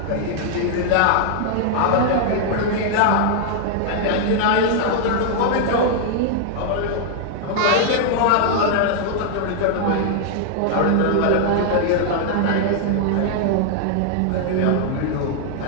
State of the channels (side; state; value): both; different; correlation -0.01